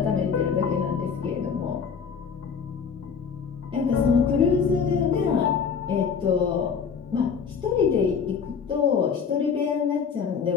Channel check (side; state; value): right; quieter; 6.3 dB